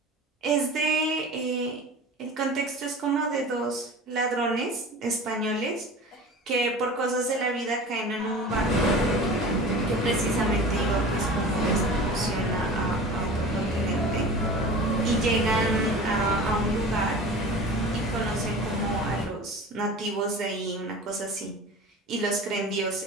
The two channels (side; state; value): both; normal; correlation 0.37